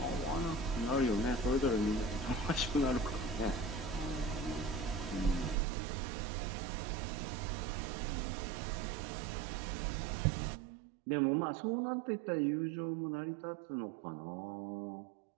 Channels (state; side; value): drops out; left; at 5.6 s